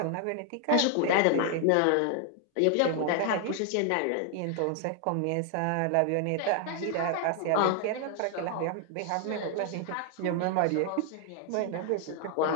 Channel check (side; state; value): both; different; correlation 0.00